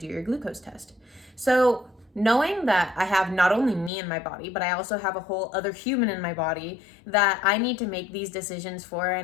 your glucose test. So knowing that I have not only me in my body, but I also have a whole other human in my body that I need to make these decisions for,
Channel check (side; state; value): right; drops out; at 3.9 s